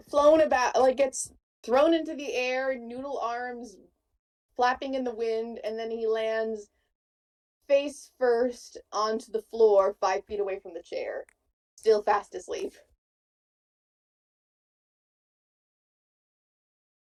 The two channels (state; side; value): identical; both; correlation 1.00